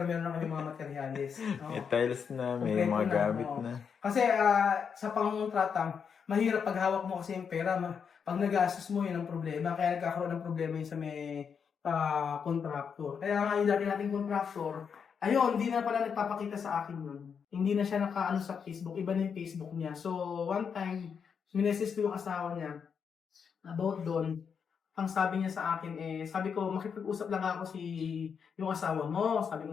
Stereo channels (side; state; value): right; quieter; 6.7 dB